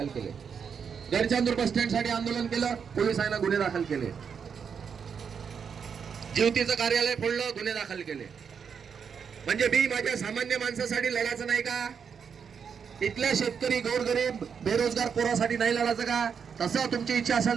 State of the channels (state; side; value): quieter; left; 6.7 dB